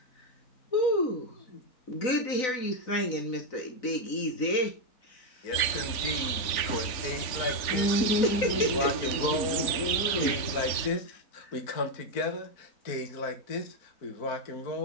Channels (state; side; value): late; right; 3.5 ms